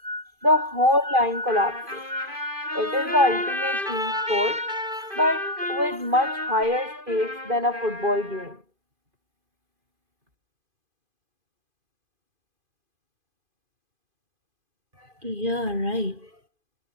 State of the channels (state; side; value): late; left; 2.5 ms